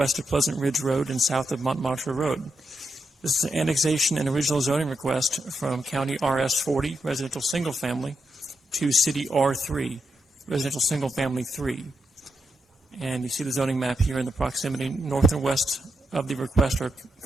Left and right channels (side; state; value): both; normal; correlation 0.83